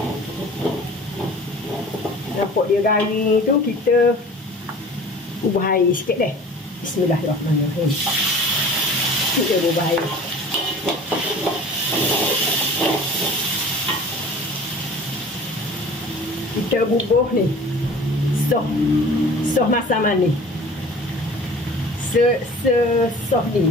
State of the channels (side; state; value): both; normal; correlation 0.43